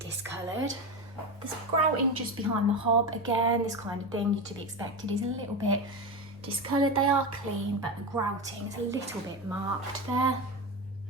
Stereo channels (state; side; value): normal; both; correlation 0.19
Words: discoloured. There's grouting just behind the hob. Again, this kind of thing to be expected is a little bit discoloured. They are clean, but the grouting is a little bit marked there.